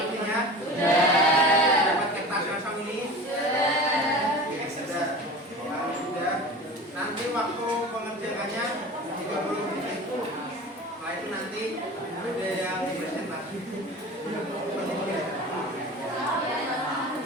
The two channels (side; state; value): both; normal; correlation 0.36